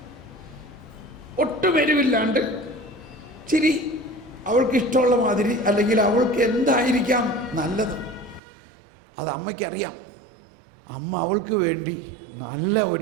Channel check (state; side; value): drops out; left; at 8.4 s